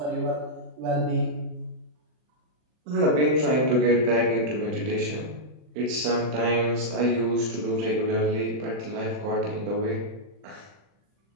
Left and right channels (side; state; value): left; late; 40 ms